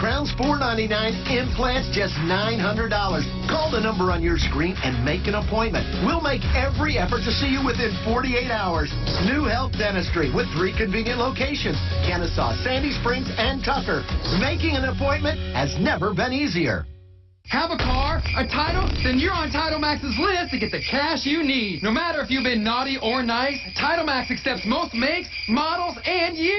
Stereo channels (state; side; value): identical; both; correlation 1.00